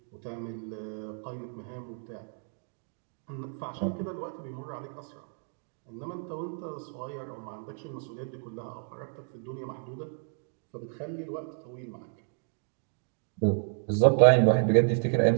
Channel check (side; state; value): left; silent; 57 dB below the other